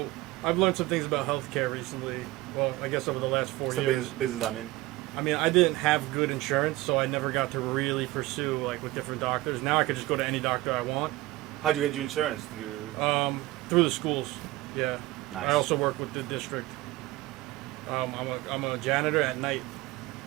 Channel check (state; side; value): quieter; left; 18.7 dB